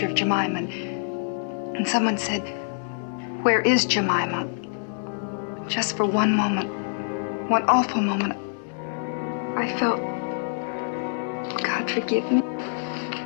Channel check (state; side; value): silent; right; digital silence